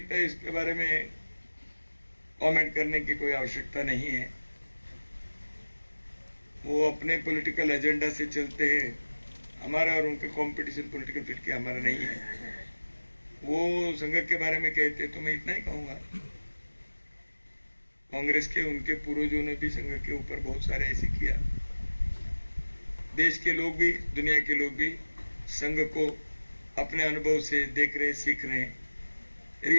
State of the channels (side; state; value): both; inverted; correlation -1.00